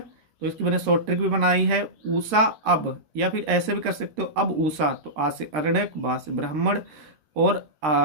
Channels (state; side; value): late; left; 13 ms